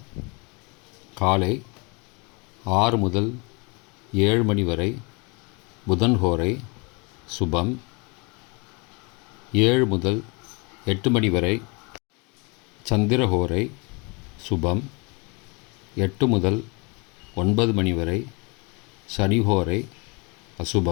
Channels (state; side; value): quieter; right; 29.8 dB